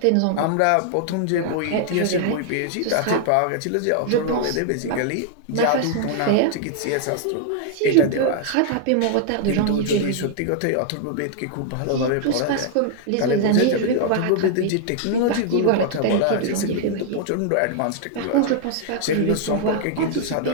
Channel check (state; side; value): different; both; correlation -0.01